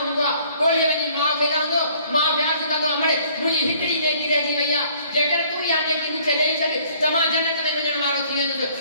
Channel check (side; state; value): both; inverted; correlation -0.59